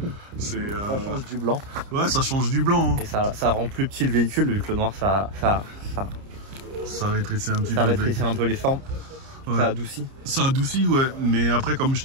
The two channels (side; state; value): left; late; 30 ms